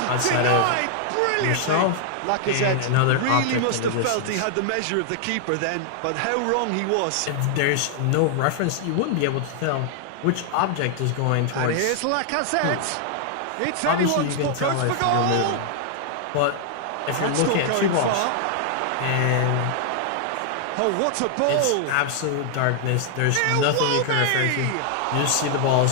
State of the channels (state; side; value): different; both; correlation 0.00